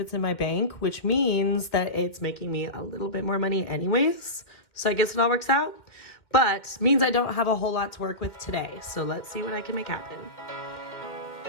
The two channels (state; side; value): late; right; 2.1 ms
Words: it's in my bank, which means that it's making me a little bit more money anyways. So I guess it all works out, but means I don't have a whole lot to work with today. So let's see what I can make happen.